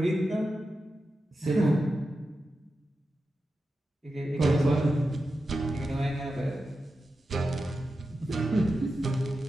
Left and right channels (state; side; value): normal; both; correlation 0.91